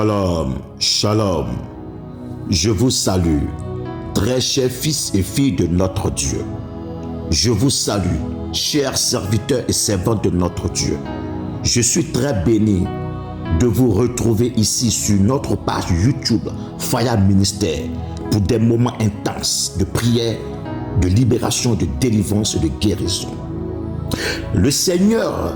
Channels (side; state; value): both; identical; correlation 1.00